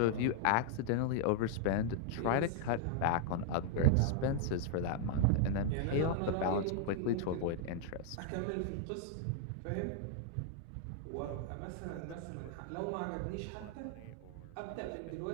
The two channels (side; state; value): both; different; correlation 0.00